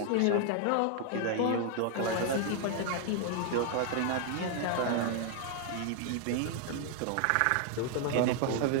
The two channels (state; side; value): different; both; correlation 0.00